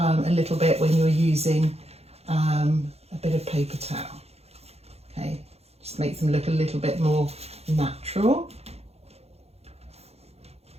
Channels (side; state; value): left; late; 0.30 ms